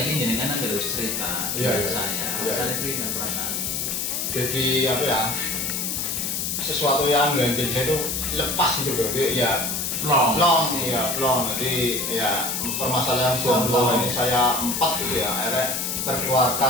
ingin jenengan harus cerita saya pribadi perasaan. Jadi apa ya, sesuatu yang ganjil saya itu lepas gitu bro, ya long. Jadi ya permasalahan jomblo ini saya 4 gitu ya, akhirnya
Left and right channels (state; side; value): noise; left; hiss, 1 dB below the sound